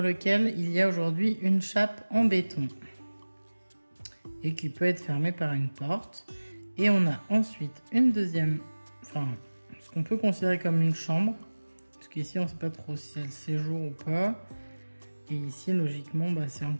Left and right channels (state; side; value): inverted; both; correlation -1.00